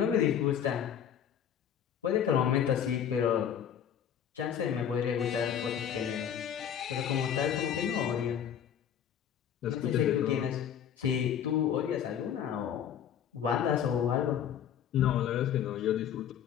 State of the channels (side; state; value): right; quieter; 9.1 dB